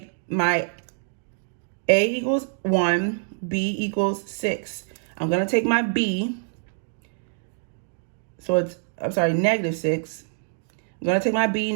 my a equals 1, b equals 6. I'm going to take my b, so it's, negative 6. I'm going to take my b,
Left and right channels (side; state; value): left; silent; digital silence